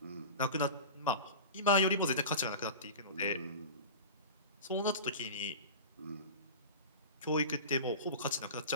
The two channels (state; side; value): inverted; both; correlation -0.31